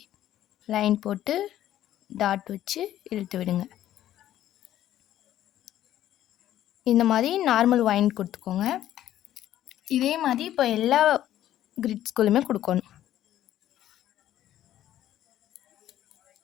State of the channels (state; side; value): quieter; right; 12.5 dB